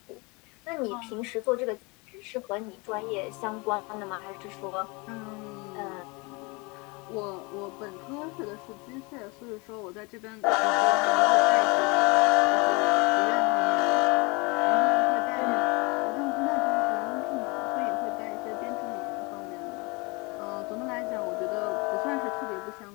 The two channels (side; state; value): right; quieter; 28.0 dB